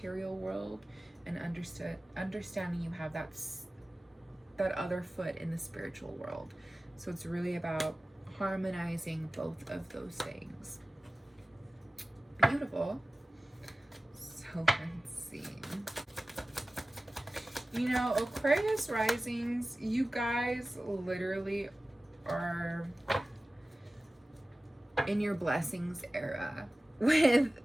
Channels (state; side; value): normal; both; correlation 0.96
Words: world, and understanding you have that other foot in the spiritual world. So it's really about harmonizing both of those things. Beautiful. So let's see. Aquarius risings, you guys literally are in your blessings era, with